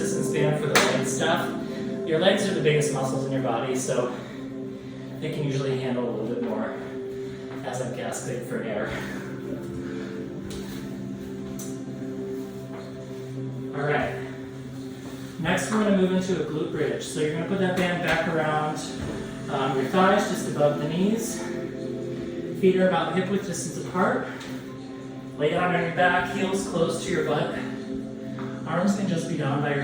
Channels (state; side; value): identical; both; correlation 1.00